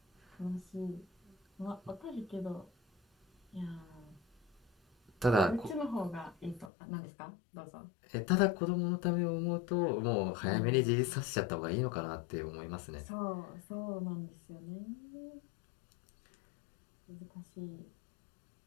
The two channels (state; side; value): drops out; right; at 6.7 s